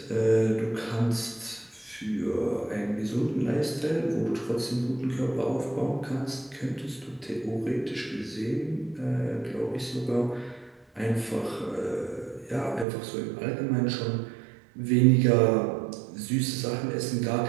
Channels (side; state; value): left; drops out; at 12.9 s